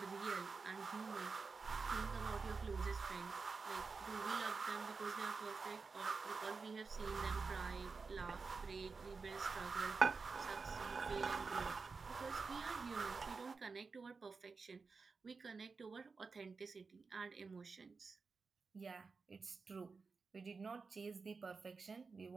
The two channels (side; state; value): left; quieter; 4.6 dB